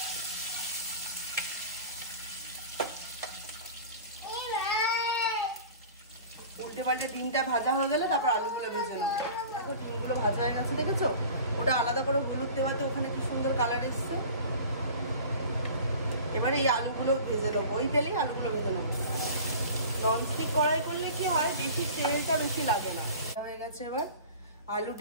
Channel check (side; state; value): both; inverted; correlation -0.40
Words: উল্টে পাল্টে ডিমটা ভাজা হয়ে গেলে তারপর আলুগুলো ভেজে নেবো। দেখো ডিমগুলো ভাজা হয়ে গেছে, দেখেছো? ওটা আলাদা করে হলুদ দেওয়াতে ওখানে কি সুন্দর কালার এসছে। এবারে এই আলুগুলো ভেজে নেবো, ওই তেলেই আলুগুলো ভেজে নেবো। ননস্টিক কড়াই করলে কি হয়, বেশি তেলটা বেশি লাগে না। হয়ে গেছে, এবার আলু